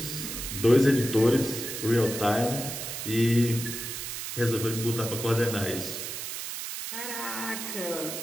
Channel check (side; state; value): right; noise; hiss, 6 dB below the sound